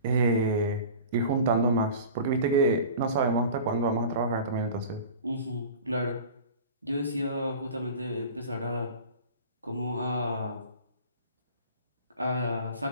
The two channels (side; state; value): both; inverted; correlation -0.39